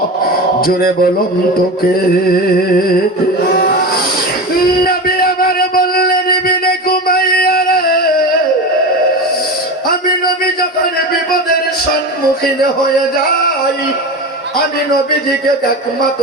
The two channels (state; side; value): normal; both; correlation 0.25